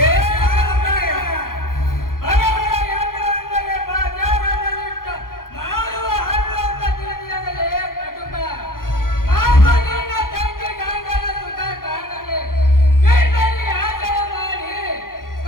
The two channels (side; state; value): right; late; 0.91 ms